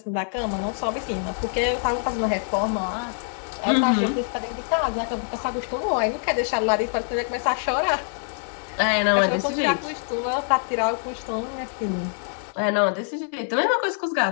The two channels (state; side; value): silent; right; digital silence